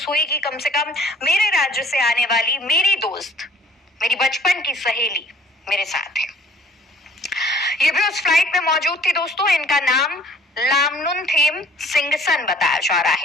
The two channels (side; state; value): both; normal; correlation 0.54